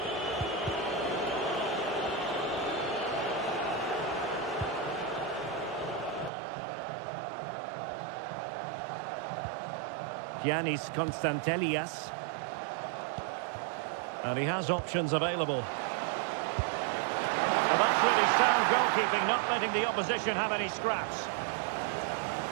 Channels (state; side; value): drops out; left; at 6.3 s